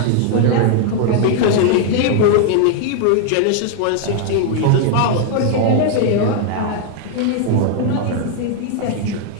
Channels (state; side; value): different; both; correlation 0.00